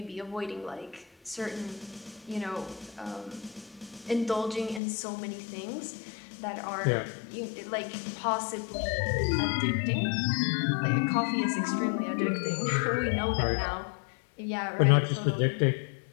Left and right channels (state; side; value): drops out; right; at 4.8 s